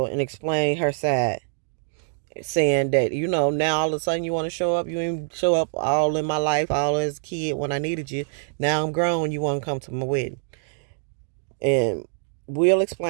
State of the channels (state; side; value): silent; left; digital silence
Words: and explained her side, saying that, now all of a sudden you want to show up. You didn't show up all in my life, all as a kid when I needed you. Now I'm grown, you want to come to my wedding. And Will